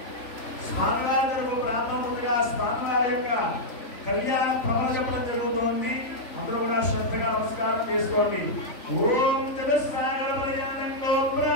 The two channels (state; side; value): late; right; 3.5 ms